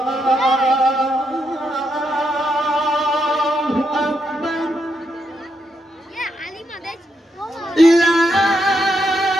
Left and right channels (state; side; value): normal; both; correlation 0.81